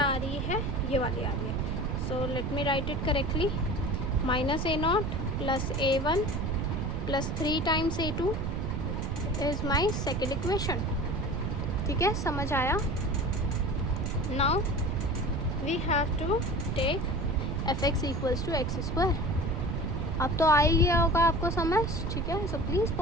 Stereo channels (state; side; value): noise; right; rumble, 1 dB below the sound